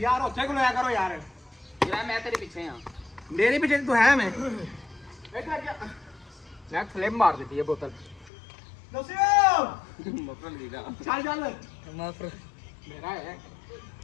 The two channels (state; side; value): drops out; right; at 8.3 s